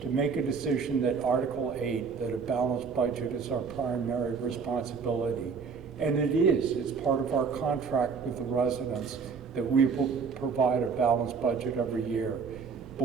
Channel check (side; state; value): left; quieter; 5.5 dB